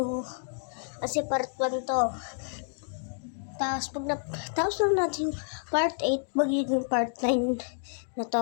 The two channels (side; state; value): right; silent; digital silence